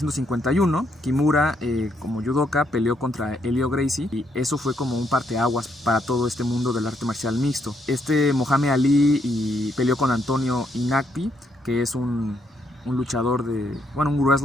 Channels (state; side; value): normal; both; correlation 0.74